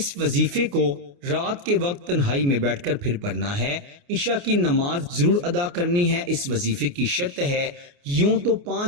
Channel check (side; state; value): left; late; 29 ms